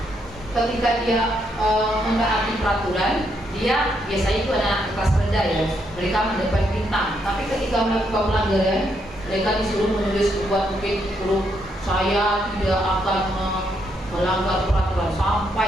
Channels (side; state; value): both; normal; correlation 0.76